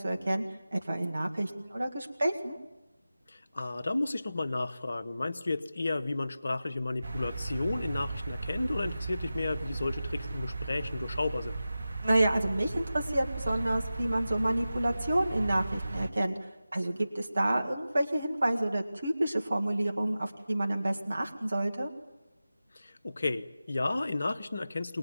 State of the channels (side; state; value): both; inverted; correlation -0.94